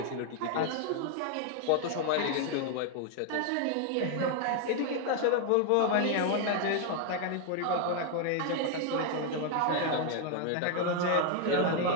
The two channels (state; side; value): different; both; correlation 0.00